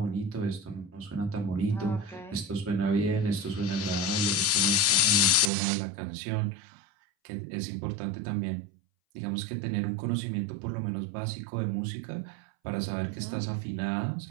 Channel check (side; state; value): left; drops out; at 5.5 s